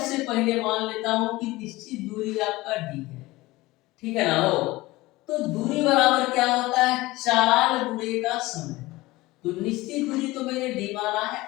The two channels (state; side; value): quieter; right; 19.7 dB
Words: पहले मान लेता हूं कि निश्चित दूरी आपका डी है, ठीक है ना हो। तो दूरी बराबर क्या होता है, चाल गुणे का समय। तो निश्चित दूरी तो मैंने डी माना है,